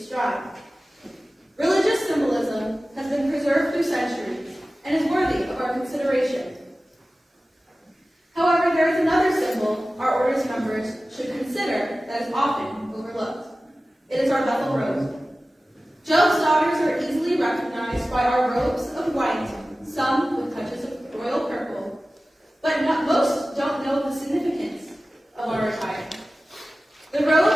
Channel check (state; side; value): normal; both; correlation 0.96